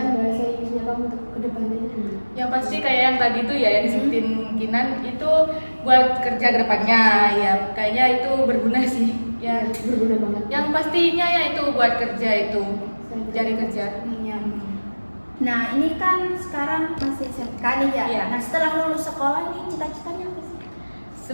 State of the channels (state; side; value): inverted; both; correlation -1.00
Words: bahasa Inggrisnya kamu untuk kedepannya? Yang pasti kayak yang tadi tuh ya yang disebutin Kinan itu buat kerja ke depannya ya, kayaknya itu berguna sih ya. Berguna banget. Yang pastinya ya itu buat kerja itu, cari kerja. Iya. Nah, ini kan sekarang masih SMK nih ya. Iya. Nah, setelah lulus sekolah nih cita-citanya apa sih?